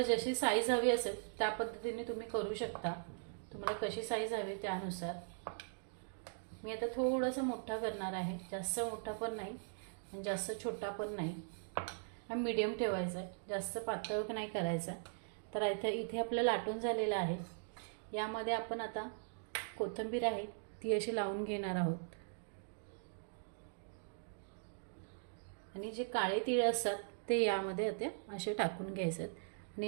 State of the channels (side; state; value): left; silent; digital silence